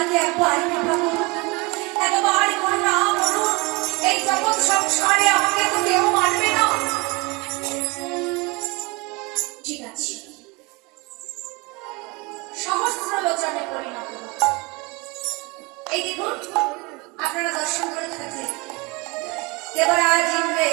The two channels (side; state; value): left; quieter; 26.5 dB